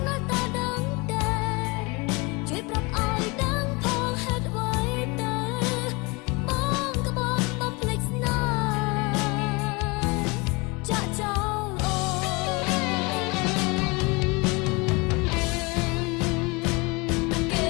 ណាស់តែដឹងតែជួយប្រាប់ឲ្យដឹងផងហេតុអ្វីទៅបងក៏បងបំភ្លេចស្នេហ៍ចាក់ចោលអូគេ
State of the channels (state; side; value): quieter; right; 27.0 dB